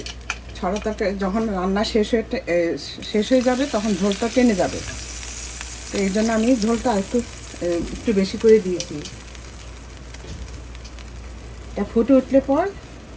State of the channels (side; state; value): both; identical; correlation 1.00